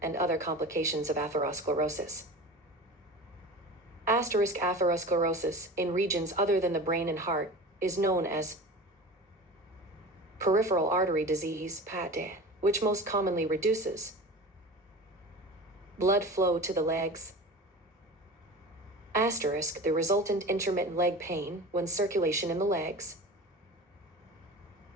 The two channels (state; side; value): normal; both; correlation 0.34